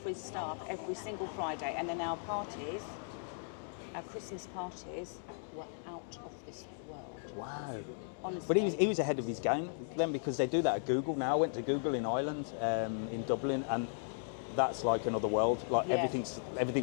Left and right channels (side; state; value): right; silent; digital silence